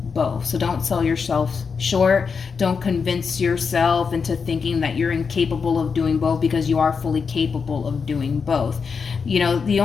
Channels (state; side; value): quieter; right; 5.6 dB